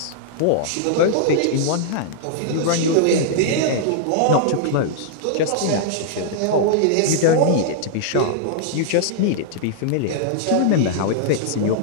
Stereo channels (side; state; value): both; different; correlation -0.01